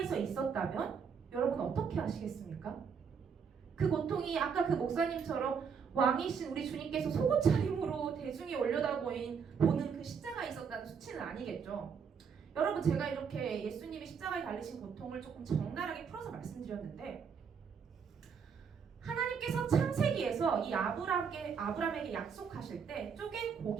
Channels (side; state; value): left; quieter; 6.4 dB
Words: 있었다면 여러분 어떻게 하시겠습니까? 그 고통이 아까 그 목사님처럼 왕이신 우리 주님께서 속옷 차림으로 대중이 보는 그 십자가에 있었다는 수치는 아니겠죠. 여러분 제가 이렇게 예수님이 십자가에 달리신 고통을 조금 적나라하게 풀어서 말씀드렸는데 하나님께서 창세기에서 이 아브람에게 약속하실 때 쪼갠